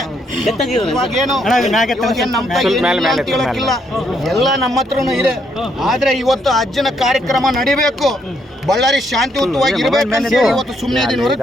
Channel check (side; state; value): both; normal; correlation 0.74